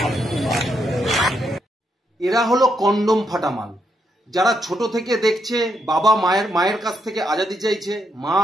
এরা হলো কন্ডম ফাটা মাল, যারা ছোট থেকে দেখছে বাবা মায়ের কাছ থেকে আজাদি চাইছে, মা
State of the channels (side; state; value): both; normal; correlation 0.78